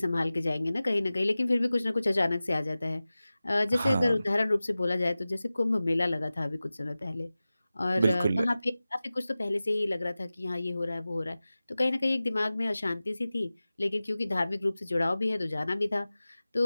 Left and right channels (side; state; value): both; inverted; correlation -0.96